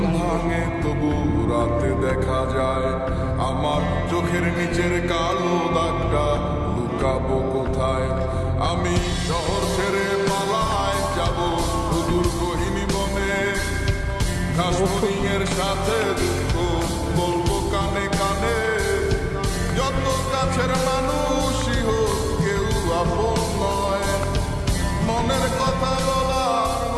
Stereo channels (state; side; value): identical; both; correlation 1.00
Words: ভাঙে তবু রাতে দেখা যায় আমার চোখের নিচের কালো দাগটা লুকাবো কোথায়। আমি শহর ছেড়ে পালায় যাব সুদূর গহীন বনে, ঘাসফড়িংয়ের সাথে দুঃখ বলবো কানে কানে। যত কাছের মানুষই হোক কেউ আপন নয়, মনের কথা বলার